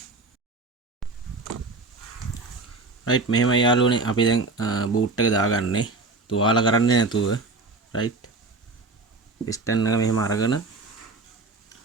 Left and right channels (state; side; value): quieter; left; 3.7 dB